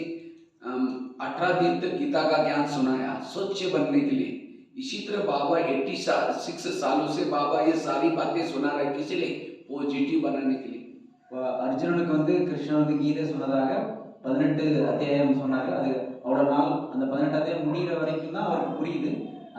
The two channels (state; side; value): identical; both; correlation 1.00